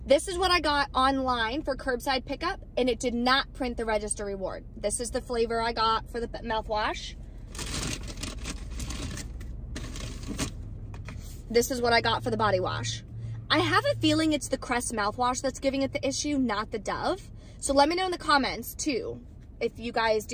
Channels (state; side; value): identical; both; correlation 1.00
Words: This is what I got online for curbside pickup, and it did not print the register reward. This is the flavor I got for the mouthwash. This is what I got for the body wash. I have a feeling it's the Crest mouthwash that's giving it the issue, not the Dove. So let me know in the comments too, if you guys